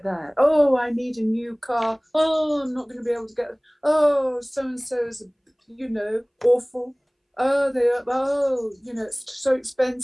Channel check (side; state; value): both; identical; correlation 1.00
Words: that. Oh, I need a new car. Oh, I'm not going to be able to get it. Oh, so-and-so is, awful. Oh, it's so